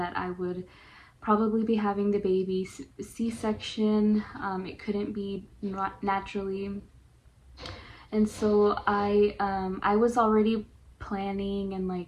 I would probably be having the baby C-section. It couldn't be naturally. And so I was already planning and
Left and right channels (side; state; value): both; identical; correlation 1.00